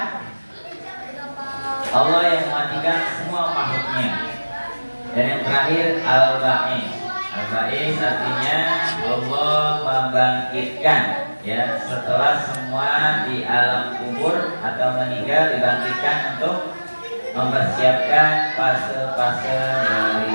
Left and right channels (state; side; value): inverted; both; correlation -1.00